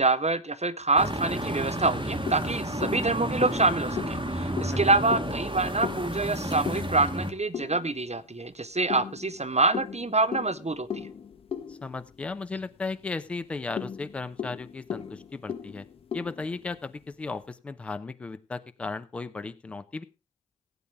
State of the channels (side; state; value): both; normal; correlation 0.01